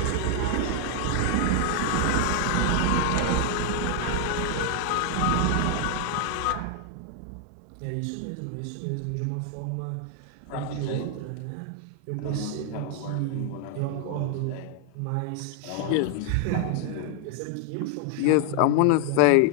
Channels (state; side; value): different; both; correlation 0.00